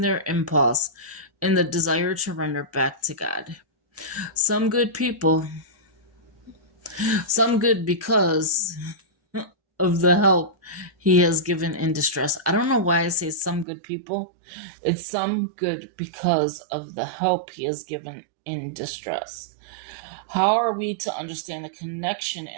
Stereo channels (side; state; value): left; drops out; at 13.7 s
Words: their impulse in the desire to render back to God. Some good because of the help he has given in distress. I don't know why I say some good people. It's some good because of the help he has given in distress. How are we to understand the connection